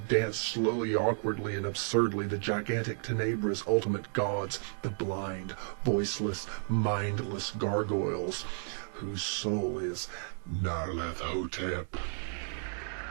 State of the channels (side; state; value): left; silent; 56 dB below the other